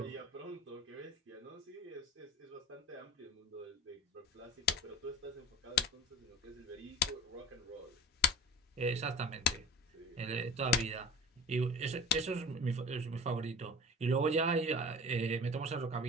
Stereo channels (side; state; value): both; normal; correlation 0.35